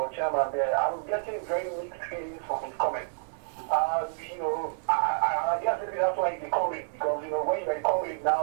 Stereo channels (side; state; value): left; silent; digital silence